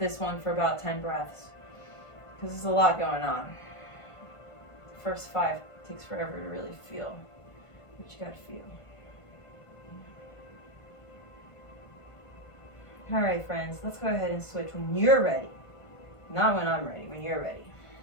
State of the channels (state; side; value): late; right; 1.5 ms